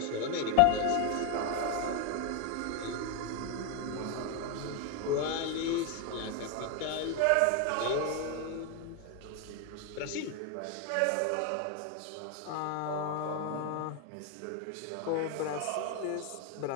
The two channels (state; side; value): different; both; correlation 0.01